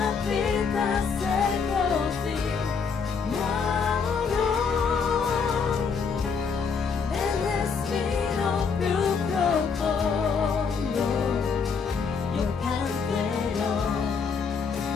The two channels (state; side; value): quieter; right; 5.6 dB